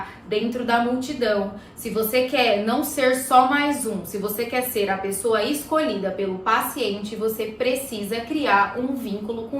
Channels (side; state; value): both; identical; correlation 1.00